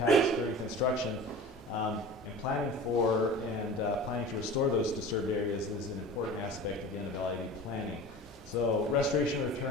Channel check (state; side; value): normal; both; correlation 0.38